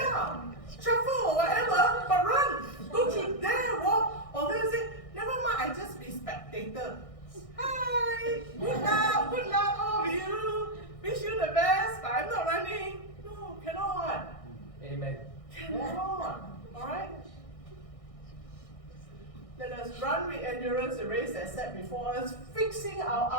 shuffle or whatever, but run. Don't you dare walk. Or then say, never mind, I just be spectator. Hi, good luck, all of you. Wish you the best, but I'm not running. No, cannot. Amen. Cannot. Alright? Let us run with endurance the race that's set before us, fixing our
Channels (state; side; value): late; right; 1.6 ms